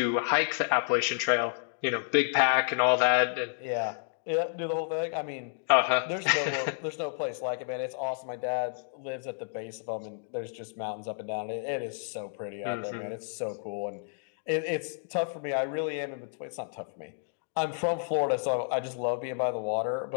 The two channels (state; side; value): silent; right; digital silence